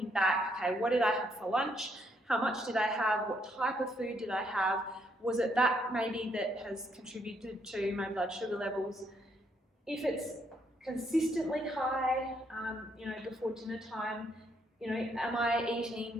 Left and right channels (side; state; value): both; normal; correlation 0.73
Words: back, okay, what did I have for lunch? How much did I have? What type of food did I have? Was it that maybe that has contributed to my blood sugar levels? If it's consistently high, before dinner time, am I eating,